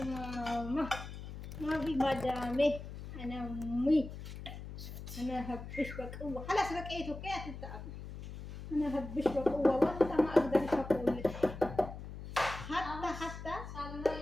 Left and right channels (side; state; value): left; noise; hum, 10 dB below the sound